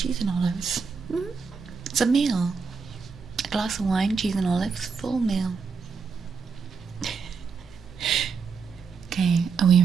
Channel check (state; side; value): quieter; left; 5.4 dB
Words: and olives. It's a meal. A glass of wine, cheese and olives, full meal. Okay, are we